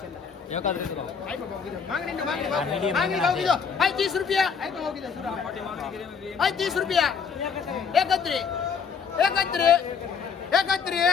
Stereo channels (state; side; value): quieter; right; 6.2 dB